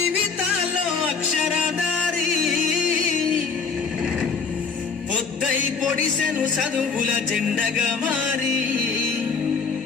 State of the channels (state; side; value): quieter; right; 5.2 dB